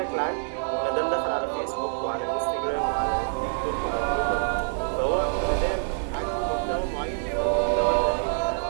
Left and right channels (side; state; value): left; silent; 61 dB below the other